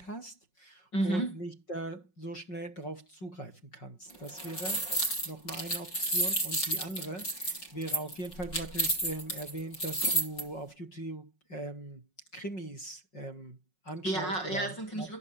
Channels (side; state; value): right; late; 5.4 ms